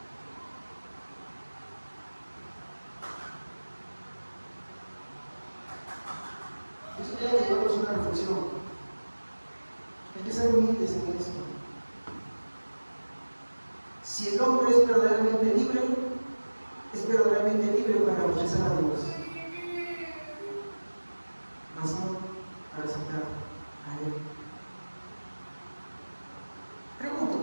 Eso tiene que llevarnos una reflexión. Hay que ser humildes en esto. Si el hombre es verdaderamente libre, es verdaderamente libre para rechazar a Dios, mas no para aceptar a Él.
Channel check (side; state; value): both; inverted; correlation -1.00